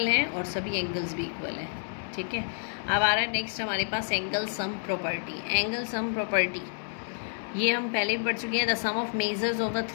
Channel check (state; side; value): silent; right; digital silence